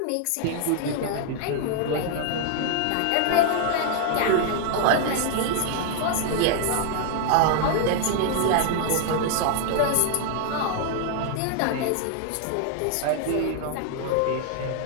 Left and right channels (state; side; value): different; both; correlation 0.00